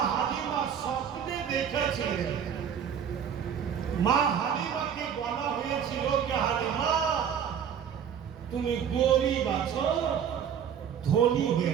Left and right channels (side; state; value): left; quieter; 8.2 dB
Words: হালিমা স্বপ্নে দেখেছিলেন, মা হালিমাকে বলা হয়েছিল যে হালিমা তুমি গরিব আছো, ধনী